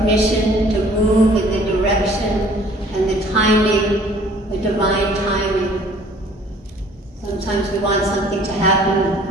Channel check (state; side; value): normal; both; correlation 0.54